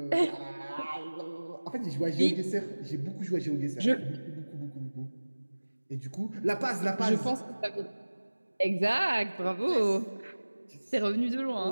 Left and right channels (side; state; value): both; inverted; correlation -1.00